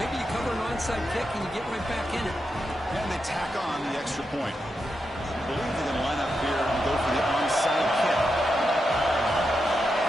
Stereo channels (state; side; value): normal; both; correlation 0.86